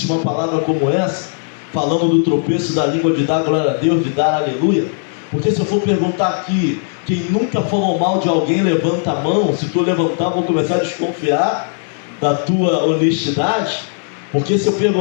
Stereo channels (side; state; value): right; silent; 68 dB below the other